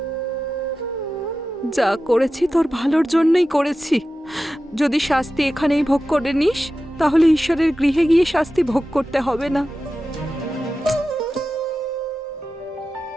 যা করেছি তোর ভালোর জন্যই করেছি। যদি শাস্তি এখানেই ভোগ করে নিস, তাহলে ঈশ্বরের গৃহে গিয়ে শাস্তি ভোগ করতে হবে না।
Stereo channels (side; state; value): both; normal; correlation 0.93